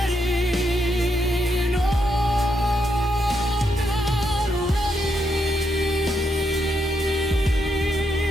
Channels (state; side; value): normal; both; correlation 0.80